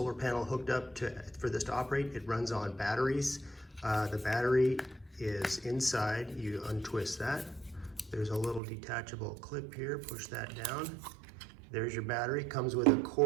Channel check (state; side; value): drops out; left; at 8.6 s